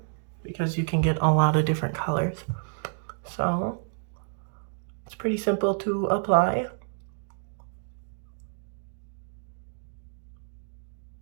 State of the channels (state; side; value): silent; left; digital silence